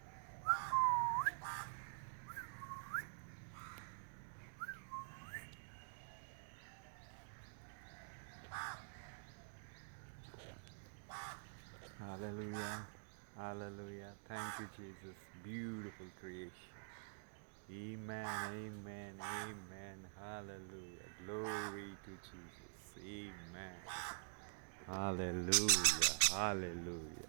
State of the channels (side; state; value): left; silent; digital silence